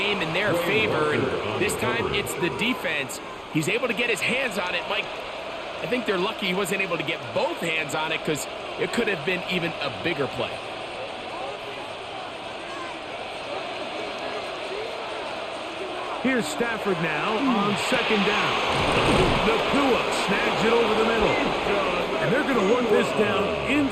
in their favor. And this time, it's the defense. He's able to get his hands on it. Mike, I think they're lucky he wasn't able to get both hands on it because it could have been even a bigger play. Here's Stafford now on 2nd down. Nakua snags it over the middle. And they're going to work this down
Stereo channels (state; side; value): identical; both; correlation 1.00